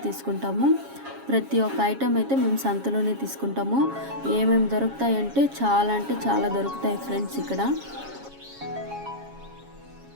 తీసుకుంటాము. ప్రతి ఒక్క ఐటమ్ అయితే మేము సంతలోనే తీసుకుంటాము. ఏమేమి దొరుకుతాయి అంటే చాలా దొరుకుతాయి ఫ్రెండ్స్ ఇక్కడ.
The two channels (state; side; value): late; left; 7.3 ms